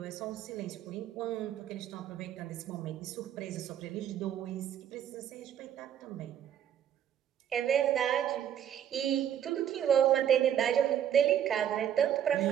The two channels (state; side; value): quieter; left; 9.9 dB